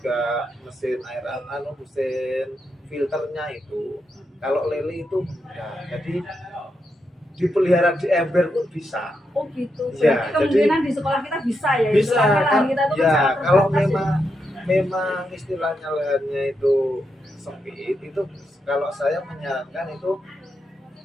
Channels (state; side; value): normal; both; correlation 0.84